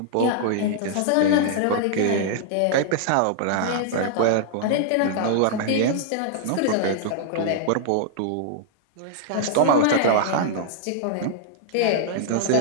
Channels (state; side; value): different; both; correlation -0.01